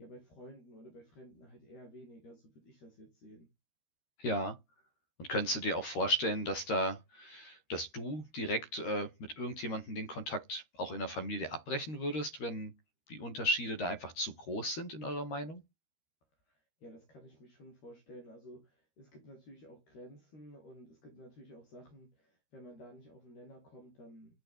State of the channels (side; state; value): right; late; 13 ms